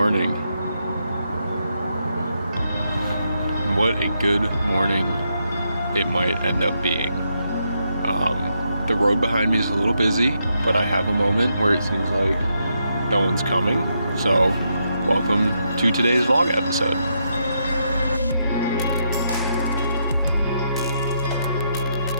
What a good morning it might end up being. The road behind me is a little busy, but I have a moment where it seems like no one's coming. So, welcome to today's vlog episode.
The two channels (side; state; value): both; inverted; correlation -0.80